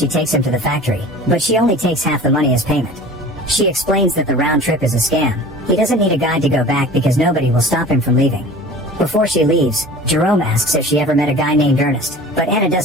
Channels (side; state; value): both; normal; correlation 0.41